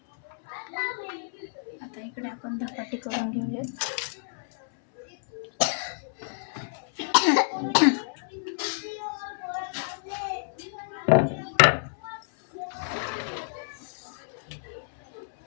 आता इकडे आपण धपाटी करून घेऊयात.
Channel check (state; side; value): silent; right; 59 dB below the other